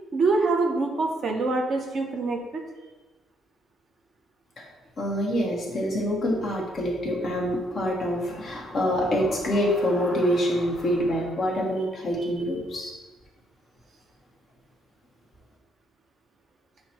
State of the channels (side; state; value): both; normal; correlation 0.71